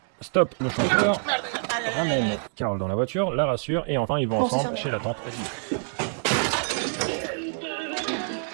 stoppe le chauffeur, ramène Carole dans la voiture, la rassure, et enfin ils vont ensemble chez la tante.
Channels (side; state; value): left; silent; 59 dB below the other